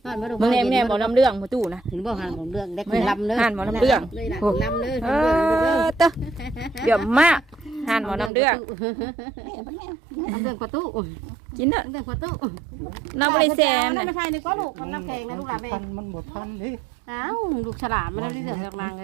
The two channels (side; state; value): left; drops out; at 8.3 s